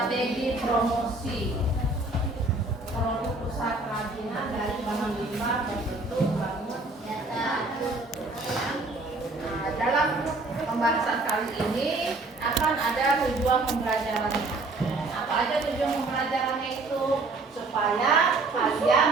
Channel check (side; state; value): left; quieter; 3.2 dB